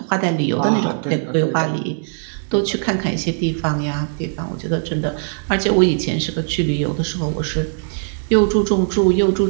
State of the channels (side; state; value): left; silent; 59 dB below the other